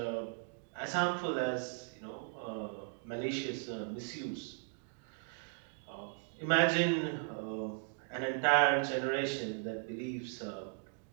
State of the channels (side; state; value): left; silent; 53 dB below the other